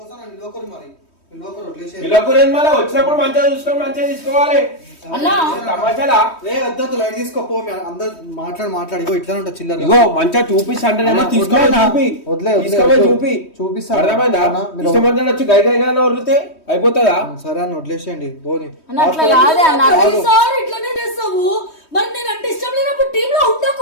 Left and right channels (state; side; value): late; right; 3.2 ms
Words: నిలవకరు. మరి మళ్ళీ వచ్చినప్పుడు మంచిగా చూసుకొని మంచిగా తీసుకోవాలి. తమాషాలా? వద్దు లైట్ తీసుకోపో. అందరు మాట్లాడి ఇట్లా ఉంటా చిల్లర. ఇగో మంచిగా చూపిస్తా అంటేనేమో తీసుకోవాలి. చూపిస్తాను. అర్థమైందా? ఇష్టమంతా వచ్చి గై గైగా వదిలితే అయిపోతుందా? సరే అని వదిలేసేయండి పోనీ. ఇట్లానే చేస్తావు. మరి నేను అంటే ఇష్టం లేనప్పుడు టీమ్ లో